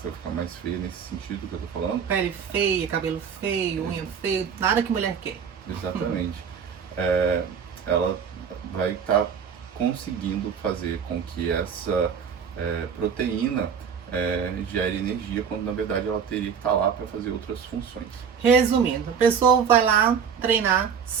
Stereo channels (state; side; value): quieter; left; 7.1 dB